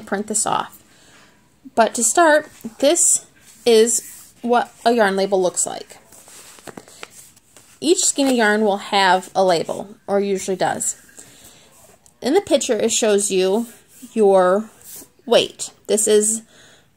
print this off. But to start, this is what a yarn label looks like. Each skein of yarn will have a label, or usually does. In the picture, it shows you your weight. This is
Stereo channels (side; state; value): both; identical; correlation 1.00